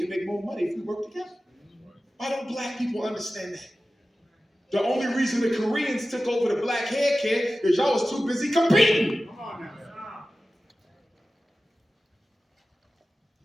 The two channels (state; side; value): normal; both; correlation 0.95